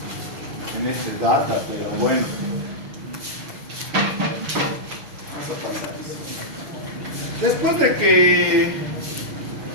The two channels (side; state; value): left; late; 6.4 ms